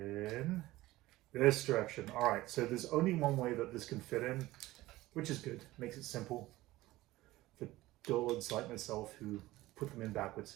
this direction. All right, so there's only one way that this can fit in, which is good. Makes it simple for dullards like myself who put them in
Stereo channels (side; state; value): left; quieter; 17.6 dB